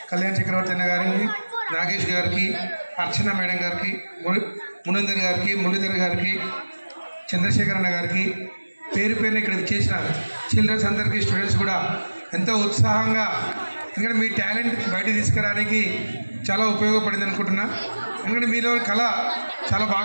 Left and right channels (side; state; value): both; inverted; correlation -1.00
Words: కళ్యాణ్ చక్రవర్తి అన్న గారిని, నాగేష్ గారికి, అర్చన మేడం గారికి, మునందర్ గారికి, మురళీధర్ గారికి, చంద్రశేఖర్ అన్న గారికి, పేరు పేరుని ఇక్కడ విచ్చేసిన చిల్డ్రన్స్ అందరికీ, స్టూడెంట్స్ కూడా ఎంతో ఉత్సాహంగా, ఎందుకంటే మీ టాలెంట్ బయట తీసుకురావడానికి చాలా ఉపయోగపడింది అనుకుంటున్నా. ఎందుకంటే మీలో కళ చాలా